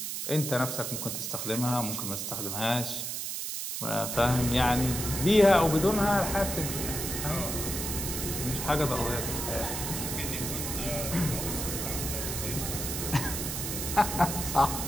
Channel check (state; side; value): noise; right; hiss, 4 dB below the sound